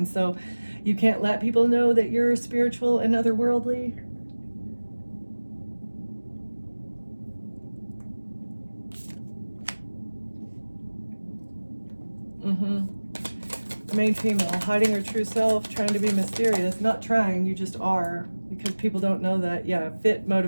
so you can't let people know that you're spiritual and otherworldly. Main female, hiding her true self, trying to be mysterious. Not trying, you just are, because people don't know that. Yeah, fit,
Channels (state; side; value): inverted; both; correlation -1.00